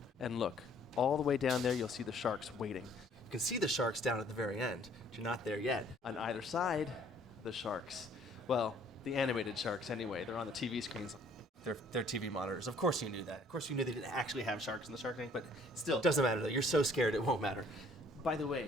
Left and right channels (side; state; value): both; normal; correlation 0.59